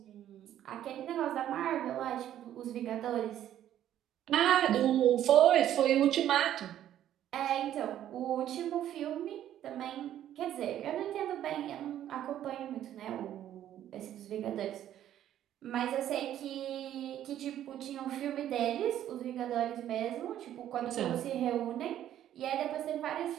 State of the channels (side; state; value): left; quieter; 11.5 dB